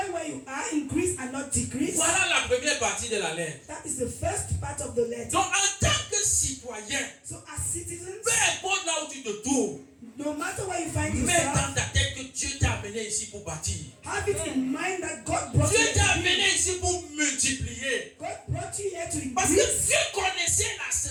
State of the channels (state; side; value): identical; both; correlation 1.00